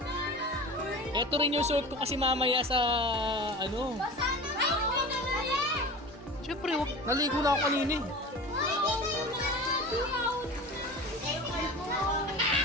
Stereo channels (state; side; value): normal; both; correlation 0.34